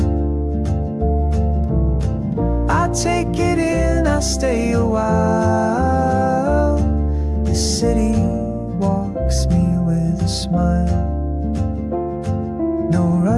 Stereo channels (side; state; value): both; identical; correlation 1.00